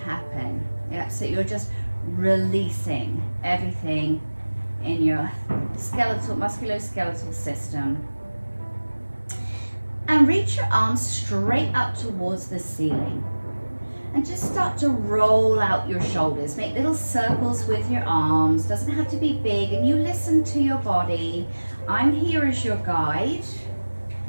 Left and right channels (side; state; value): both; inverted; correlation -1.00